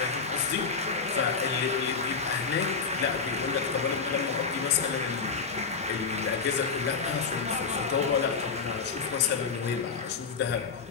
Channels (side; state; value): right; quieter; 5.1 dB